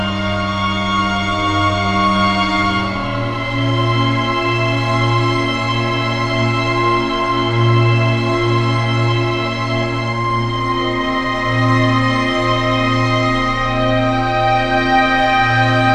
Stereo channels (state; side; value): identical; both; correlation 1.00